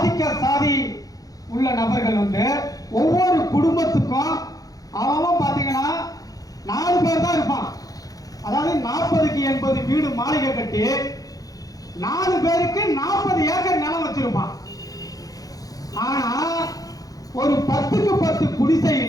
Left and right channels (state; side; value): late; right; 0.17 ms